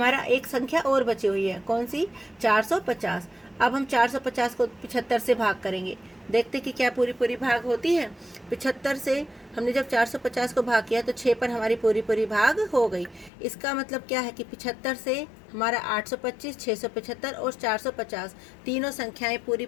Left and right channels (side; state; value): right; drops out; at 13.3 s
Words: एक संख्या और बची हुई है, कौन सी? 450। अब हम 450 को 75 से भाग करेंगे, देखते कि क्या पूरी पूरी भाग होती है। 75 से हमने जब 450 को भाग किया तो 6 पर हमारी पूरी पूरी भाग हो गई। इसका मतलब क्या है कि 75 से हमारा 825, 675 और 450 तीनों संख्याएं पूरी